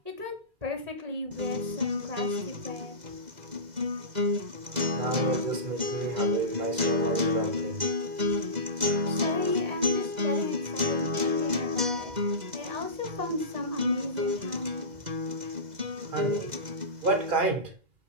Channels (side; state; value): left; late; 2.0 ms